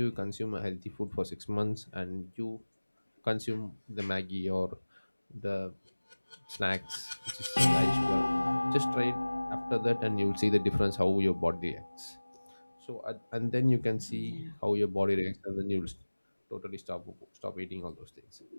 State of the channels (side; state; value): both; inverted; correlation -1.00